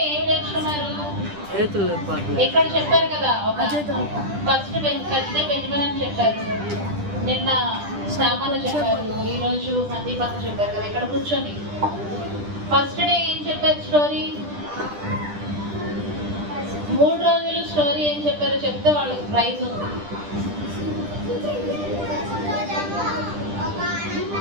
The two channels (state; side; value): late; left; 10 ms